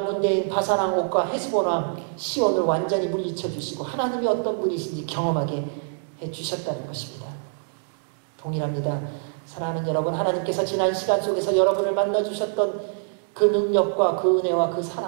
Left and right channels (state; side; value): silent; left; digital silence